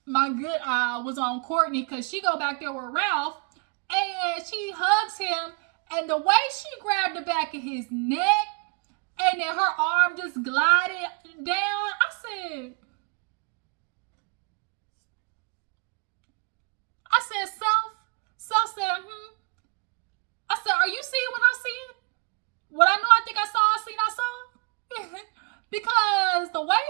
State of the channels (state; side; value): quieter; left; 33.9 dB